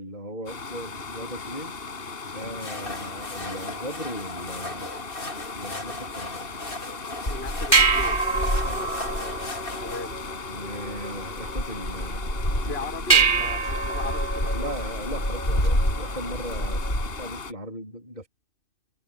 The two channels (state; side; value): late; right; 2.4 ms